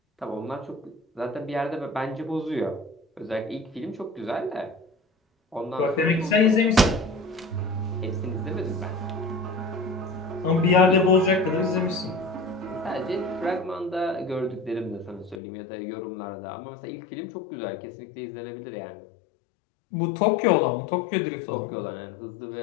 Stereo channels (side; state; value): right; drops out; at 15.4 s